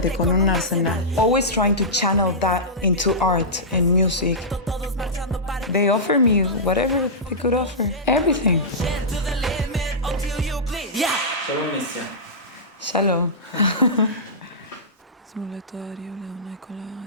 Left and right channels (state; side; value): normal; both; correlation -0.15